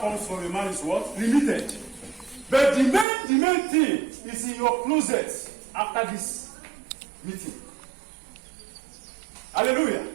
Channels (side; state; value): left; drops out; at 3.1 s